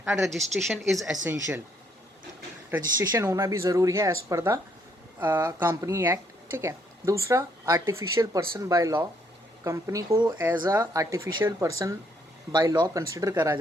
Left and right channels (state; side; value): normal; both; correlation 0.70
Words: And registration is essential, registration होना भी ज़रूरी है as per the company act, ठीक है। दूसरा, artificial person by law, company को as a artificial person by law consider करा